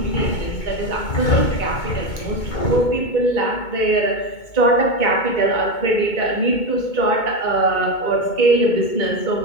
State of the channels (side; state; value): right; late; 2.2 ms